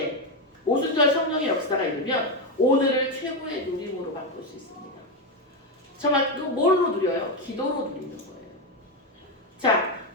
오순절 성령의 역사가 이르면 오늘을 최고의 누림으로 바꿀 수 있습니다. 정말 그 뭘로 누려요? 기도로 누리는 거예요. 자,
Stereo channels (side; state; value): both; normal; correlation 0.09